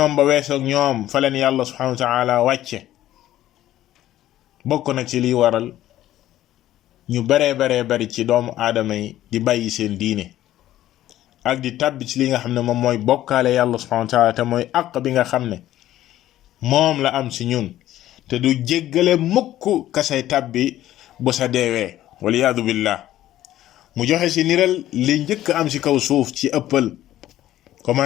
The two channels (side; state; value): right; quieter; 13.5 dB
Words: ba weesoog ñoom fa leen yàlla subhanahu wa ta'ala wàcce bokk na ci liy waral ñu bari ci doomu aadama yi di bàyyi seen diine ak di tàbbi ci li nga xam ne moom mooy bokkaale yàlla subhanahu wa ta'ala te mooy àq bi nga xam ne moom la am ci ñun te du jéggale mukk kasay tàbbi bu sa deewee waliyaadu billah mu joxe ci niral li njëkk am ci kaw suuf ci ëppal